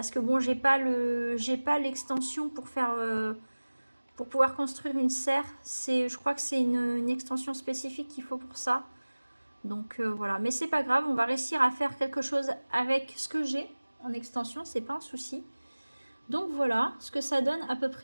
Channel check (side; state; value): both; inverted; correlation -1.00